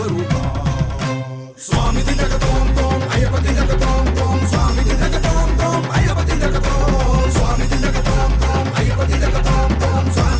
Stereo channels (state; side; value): identical; both; correlation 1.00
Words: స్వామి దిగతోం తోం అయ్యపతి జగతోం తోం, స్వామి దిగతోం తోం అయ్యపతి జగతోం, స్వామి దిగతోం తోం అయ్యపతి జగతోం తోం,